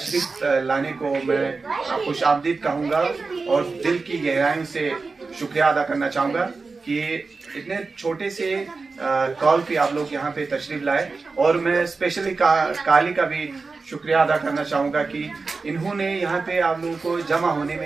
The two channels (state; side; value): quieter; left; 4.2 dB